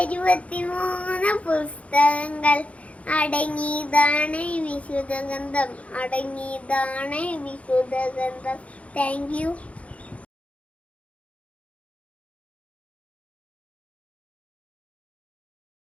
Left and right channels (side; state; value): right; late; 0.064 ms